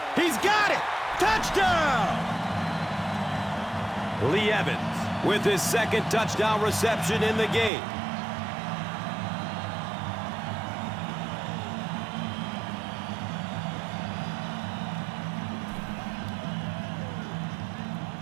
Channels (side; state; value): left; drops out; at 7.7 s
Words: He's got it. Touchdown. Lee Evans with his second touchdown reception in the game.